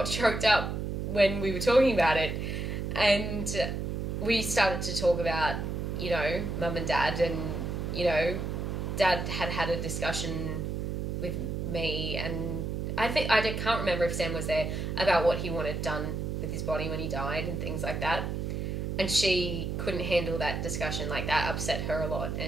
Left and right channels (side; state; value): right; noise; hum, 3 dB below the sound